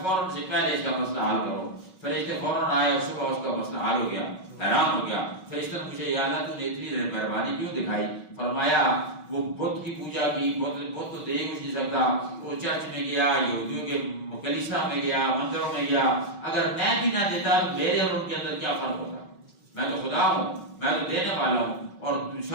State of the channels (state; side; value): late; right; 5.3 ms